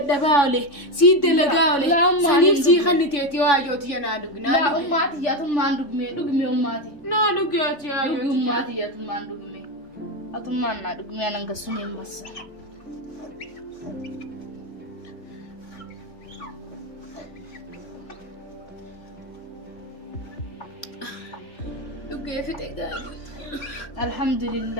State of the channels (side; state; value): right; late; 3.5 ms